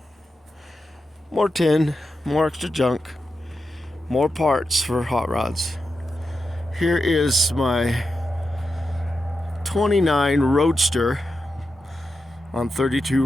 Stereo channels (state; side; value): normal; both; correlation 0.88